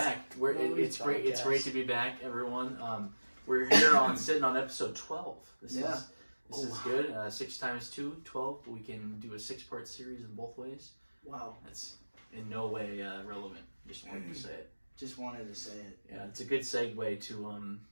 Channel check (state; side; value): inverted; both; correlation -1.00